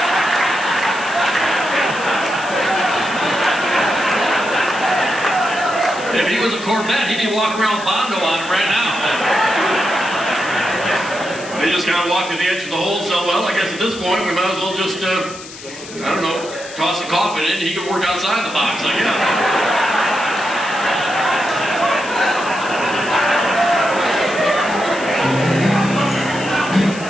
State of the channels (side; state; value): left; noise; hiss, 15 dB below the sound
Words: If he was a Corvette, he'd be walking around with Bondo on him right now. They just kind of walked to the edge of the hole, so, well, I guess at this point we might as well just, I don't know, toss a coffin in and he could work outside the box, I guess.